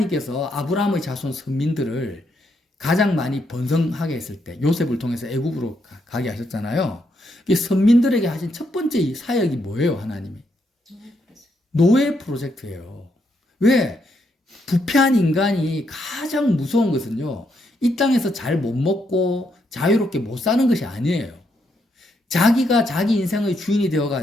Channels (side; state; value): both; normal; correlation 0.77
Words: 아브라함의 자손 선민들을 가장 많이 번성하게 했을 때 요셉을 통해서 애굽으로 가게 하셨잖아요. 선민들에게 하신 첫 번째 사역이 뭐예요? 하나님이 노예 프로젝트예요. 왜? 부패한 인간이 가장 무서운 것은요, 이 땅에서 잘 못 먹고 자유롭게 못 사는 것이 아니에요. 자기가 자기 인생의 주인이